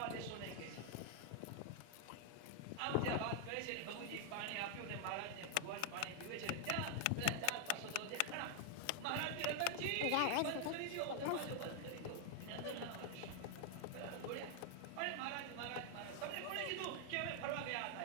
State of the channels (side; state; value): both; different; correlation 0.00